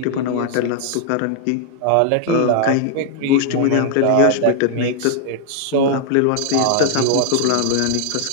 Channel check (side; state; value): both; different; correlation 0.00